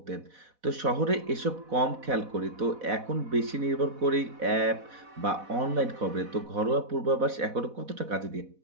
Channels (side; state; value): left; late; 4.1 ms